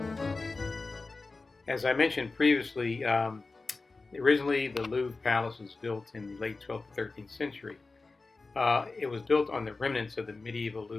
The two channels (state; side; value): quieter; right; 3.7 dB